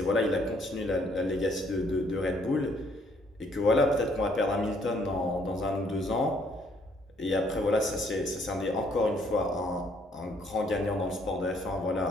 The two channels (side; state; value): both; normal; correlation 0.66